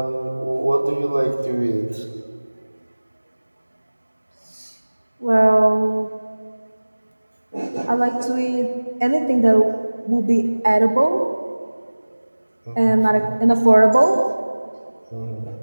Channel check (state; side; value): inverted; both; correlation -1.00